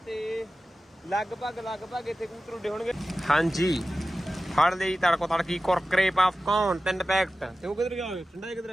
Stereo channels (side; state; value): both; normal; correlation 0.95